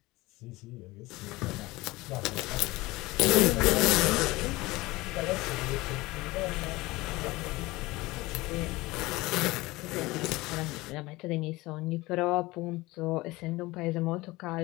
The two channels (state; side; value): quieter; right; 20.6 dB